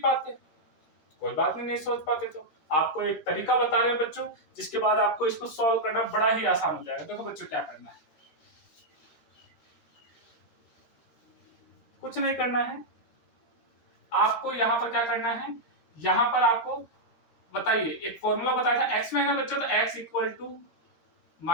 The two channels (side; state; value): right; late; 12 ms